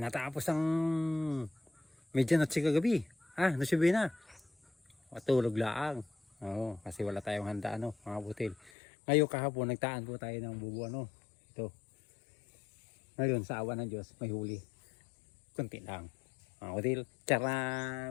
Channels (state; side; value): drops out; right; at 8.7 s